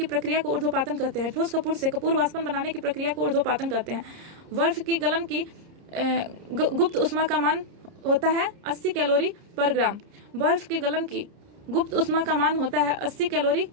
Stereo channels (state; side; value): late; left; 30 ms